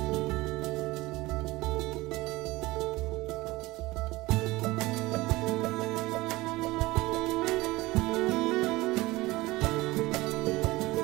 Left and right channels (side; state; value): left; quieter; 20.1 dB